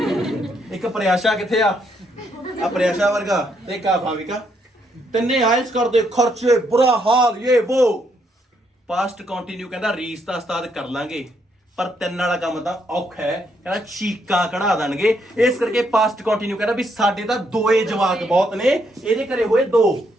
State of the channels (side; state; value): both; normal; correlation 0.74